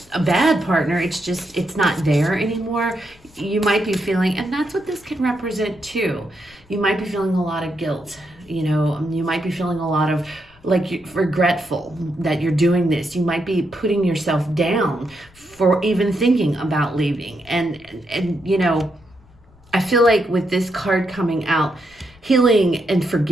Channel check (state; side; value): noise; left; rumble, 28 dB below the sound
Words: a bad partner. It's just, it's not there anymore. You might be feeling, and that's what this can represent too. You might be feeling a lot of guilt. You might be feeling a lot of regretful that you're doing this. You might be putting yourself down for even thinking about leaving. And I feel like with this card coming out, healing and